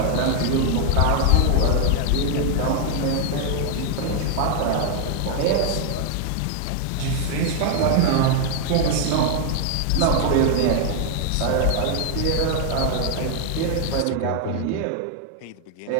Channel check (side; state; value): both; different; correlation 0.00